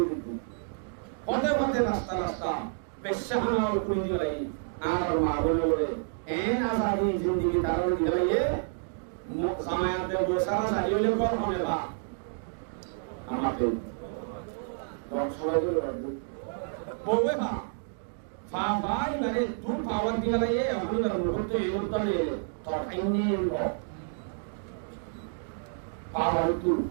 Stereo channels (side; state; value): left; silent; digital silence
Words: দিত পথে পথে রাস্তা রাস্তা পেশাহানা করে দিলাই আর মা বলে বলে এন আসাদি জিন্দেগি তার দিলাইয়ে সামায়াতে বসারা সাইলে কর হবে বা আমাকে সবাই বলে বলবে বা ফাই মানে তুই পাওয়ার দিলাইয়ে আমি মুহূর্তে এই উত্তরে তো আইনি পাওয়ার তুই